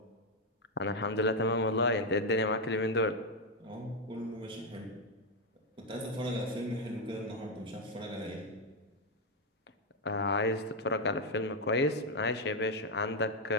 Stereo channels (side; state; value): both; normal; correlation 0.03